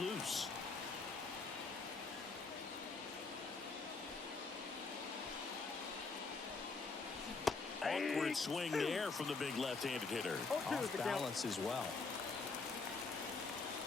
Awkward swing there from the big left-handed hitter. Off balance as well.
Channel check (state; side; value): quieter; right; 4.2 dB